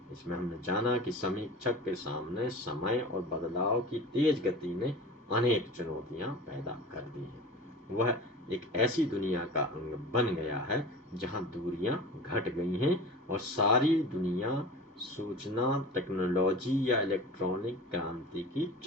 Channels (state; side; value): normal; both; correlation 0.36